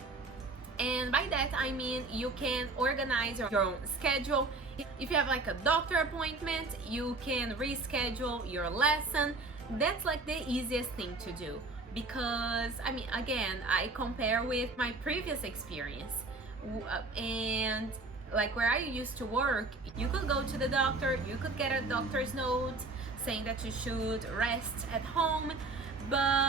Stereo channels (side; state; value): left; quieter; 3.4 dB